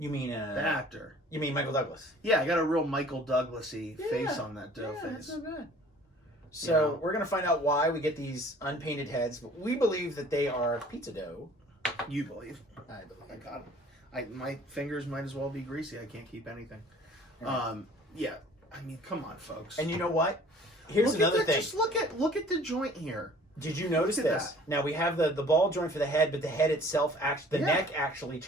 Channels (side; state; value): both; normal; correlation 0.51